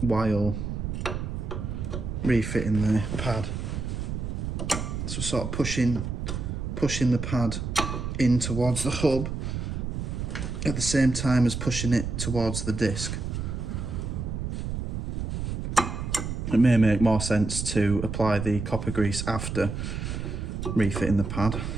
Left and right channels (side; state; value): right; noise; rumble, 4 dB below the sound